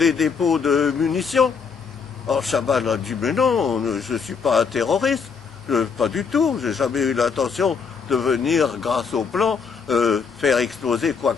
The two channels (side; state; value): right; quieter; 5.8 dB